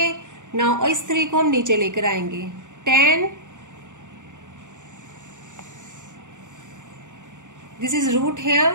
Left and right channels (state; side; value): late; left; 0.86 ms